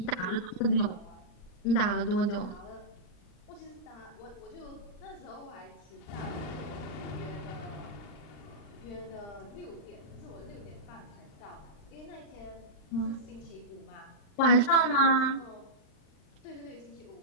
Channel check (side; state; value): right; late; 39 ms